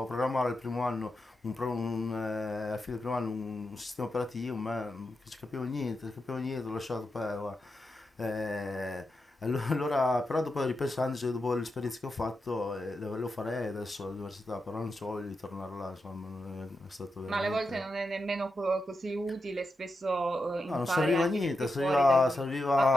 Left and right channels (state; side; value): normal; both; correlation 0.87